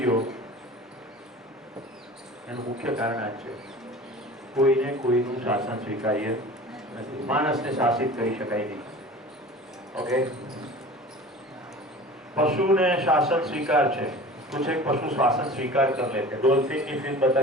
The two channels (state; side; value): normal; both; correlation 0.40